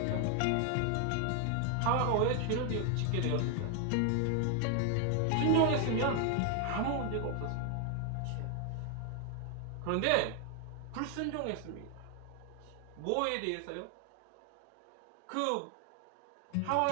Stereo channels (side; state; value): both; different; correlation 0.00